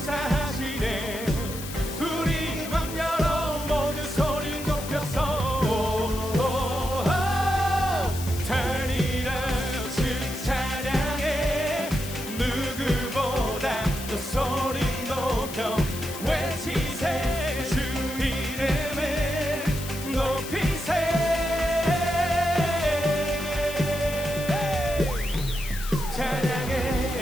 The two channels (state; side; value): noise; left; hiss, 11 dB below the sound